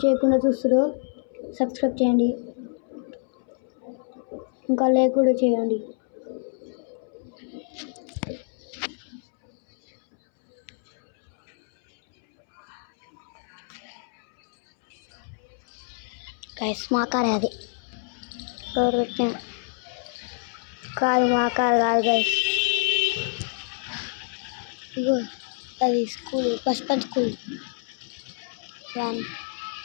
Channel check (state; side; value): silent; right; 60 dB below the other